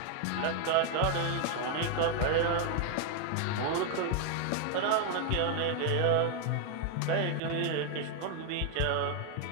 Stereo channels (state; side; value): different; both; correlation 0.01